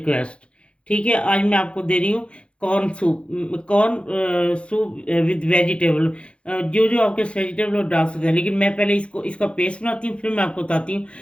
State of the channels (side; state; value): right; late; 0.059 ms